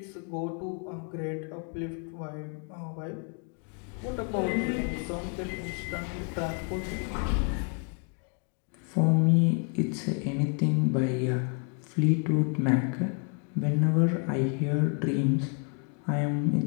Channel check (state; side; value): quieter; right; 38.9 dB